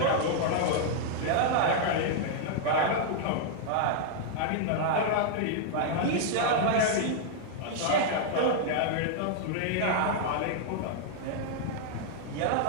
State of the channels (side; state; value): both; different; correlation -0.01